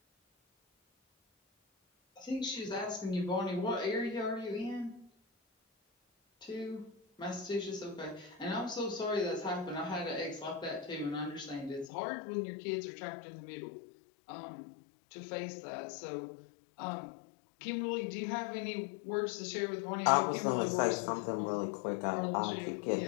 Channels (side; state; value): right; drops out; at 11.9 s